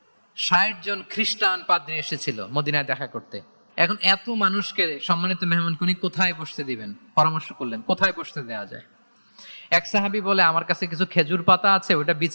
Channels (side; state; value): both; inverted; correlation -1.00